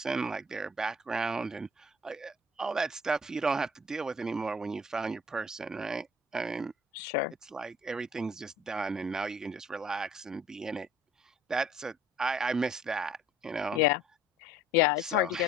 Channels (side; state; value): both; normal; correlation 0.54